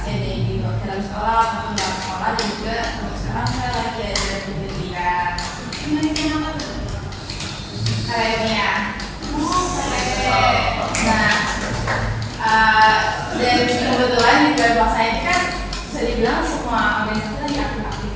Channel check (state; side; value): identical; both; correlation 1.00